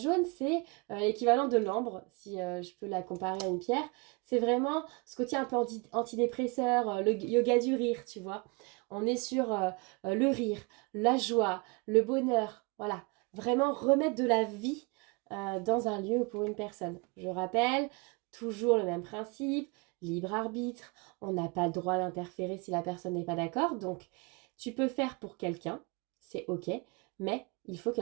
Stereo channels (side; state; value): left; quieter; 29.3 dB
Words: c'est l'équivalent de l'ambre, si je peux la comparer à une pierre. C'est vraiment ce côté un peu antidépresseur, le yoga du rire, tu vois. On est sur le rire, la joie, le bonheur. Voilà, vraiment remettre de la vie dans un lieu ou pour une personne. Je rappelle, toujours le même principe, libre arbitre. On n'a pas le droit d'interférer si la personne n'est pas d'accord. Donc, tu peux faire pour quelqu'un, c'est OK, mais il faut que